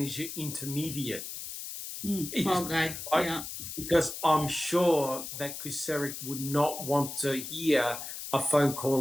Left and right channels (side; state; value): left; noise; hiss, 8 dB below the sound